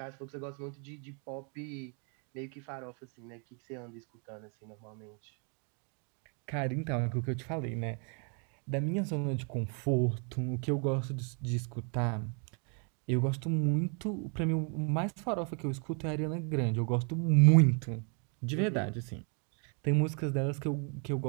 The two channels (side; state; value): left; quieter; 38.3 dB